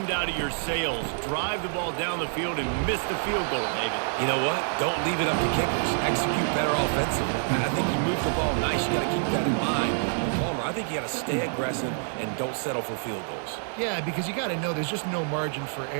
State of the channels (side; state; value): left; silent; digital silence